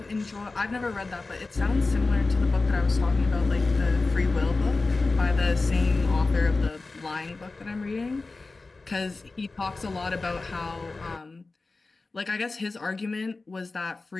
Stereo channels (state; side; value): quieter; right; 3.6 dB